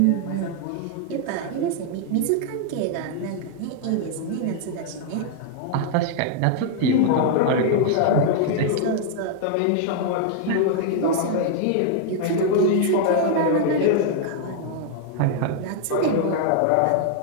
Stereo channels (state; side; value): different; both; correlation 0.00